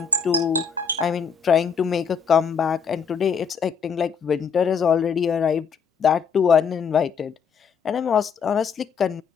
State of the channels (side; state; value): right; quieter; 6.2 dB